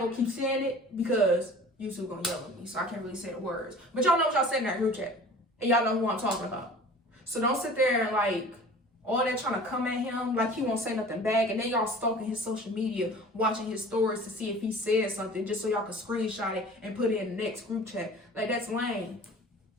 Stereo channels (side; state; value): both; normal; correlation 0.43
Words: to keep saying it because YouTube gonna yell at me, so I can't really say the words. But y'all know what y'all said in that group chat. And y'all know who I'm talking about. So don't sit there and like, all that trying to come at him like he won't say nothing back. And then y'all stalking his social media, watching his stories to see if he said something just so y'all can screenshot it and put it in the next group chat. Like, that's lame.